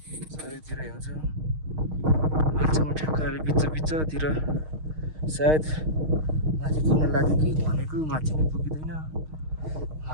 चारैतिर हिउँ छ। अहिलेसम्म ठ्याक्क अहिले बिचतिर सायद माथि पुग्न लाग्यो कि भनेको माथि नै पुगिँदैन।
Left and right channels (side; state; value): left; late; 6.4 ms